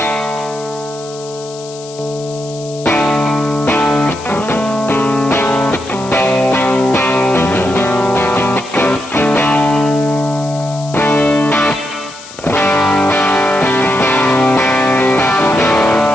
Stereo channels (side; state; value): left; noise; hiss, 17 dB below the sound